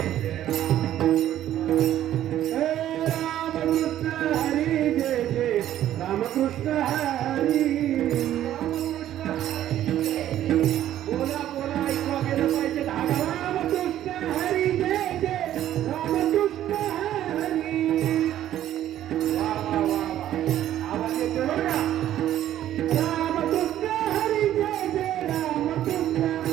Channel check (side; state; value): left; quieter; 12.2 dB